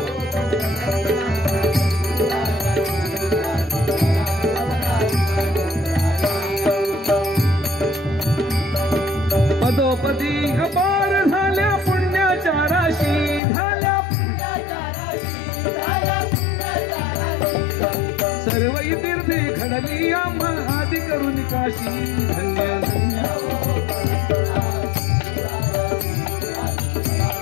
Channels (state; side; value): drops out; right; at 13.4 s